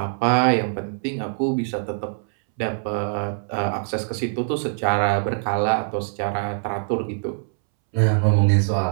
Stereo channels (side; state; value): left; silent; 63 dB below the other